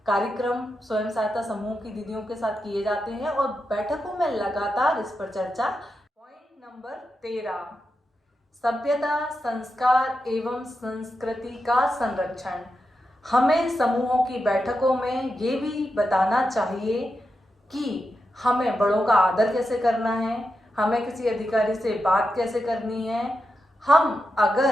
कार्यक्रम स्वयं सहायता समूह की दीदियों के साथ किए जाते हैं और बैठकों में लगातार इस पर चर्चा। पॉइंट नंबर 13, सभ्यता, संस्कार एवं संस्कृति का संरक्षण। हमें समूहों की बैठकों में ये भी बताना चाहिए कि हमें बड़ों का आदर कैसे करना है, हमें किसी अधिकारी से बात कैसे करनी है। हम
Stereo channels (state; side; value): normal; both; correlation 0.88